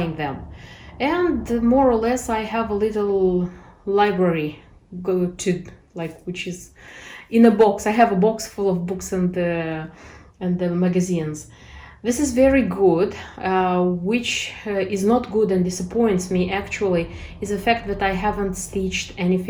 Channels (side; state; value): both; identical; correlation 1.00